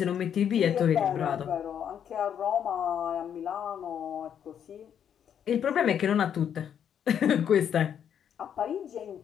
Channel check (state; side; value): quieter; right; 8.8 dB